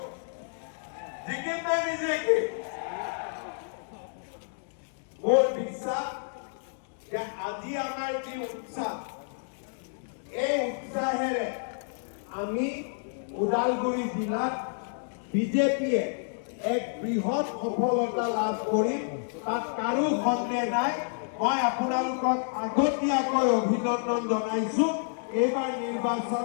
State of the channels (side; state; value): right; silent; digital silence